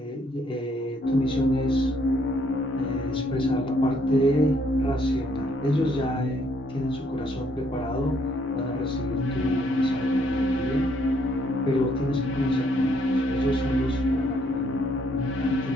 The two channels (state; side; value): normal; both; correlation 0.69